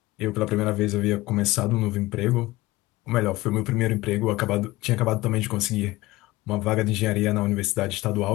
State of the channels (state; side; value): quieter; right; 19.1 dB